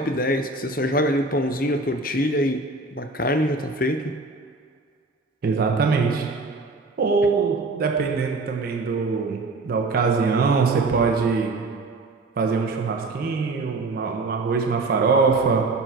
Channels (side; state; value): left; quieter; 3.3 dB